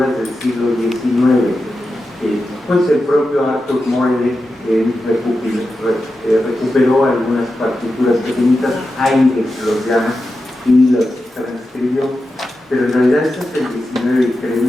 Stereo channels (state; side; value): normal; both; correlation 0.91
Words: del siglo XIX, pues el propio Arthur Morley recuperó algunas partituras pequeñitas, Haydn los llama, y los transcribió, pero en realidad estas del XIX y